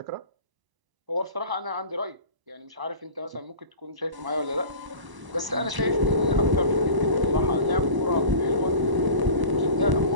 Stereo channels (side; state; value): left; late; 1.0 ms